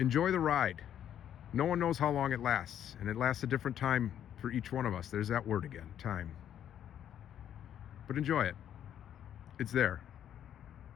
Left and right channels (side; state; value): right; quieter; 10.1 dB